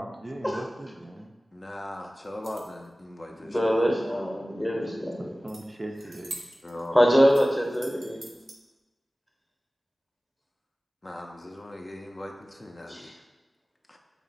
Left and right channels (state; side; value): normal; both; correlation 0.97